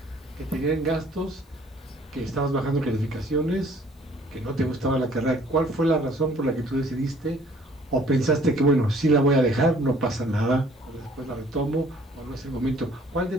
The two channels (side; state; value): both; normal; correlation 0.57